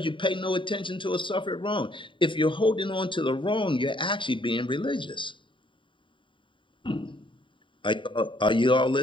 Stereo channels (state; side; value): late; right; 0.24 ms